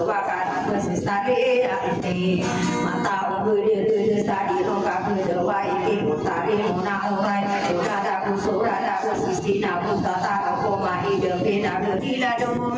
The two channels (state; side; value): identical; both; correlation 1.00